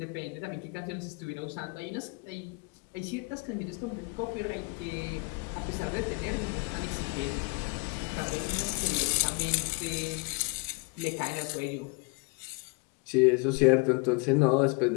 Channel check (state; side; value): quieter; right; 31.6 dB